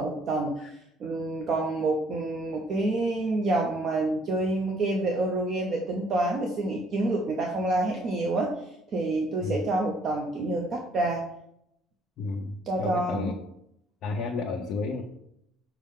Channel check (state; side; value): normal; both; correlation 0.63